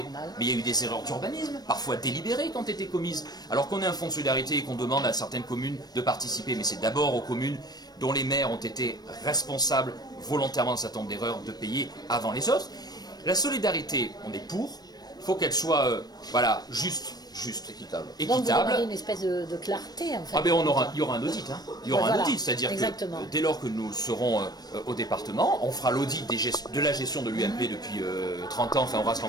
mais il y a eu des erreurs d'urbanisme, parfois délibérées quand étaient commises. Alors qu'on ait un fonds de solidarité et qu'on demande à certaines communes de participer, mais c'est d'abord aux communes dont les maires ont été responsables volontairement d'un certain nombre d'erreurs de payer avant les autres. La solidarité, on est pour, il faut qu'elle soit juste, équitable. Donc vous aurez une espèce de clarté en fait. Ah ben il y aura un audit, hein. Il y aura un audit, c'est-à-dire que dès lors que nous serons au département, on fera l'audit de la gestion de l'UMP depuis 30 ans, enfin Horace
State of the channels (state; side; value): late; right; 0.19 ms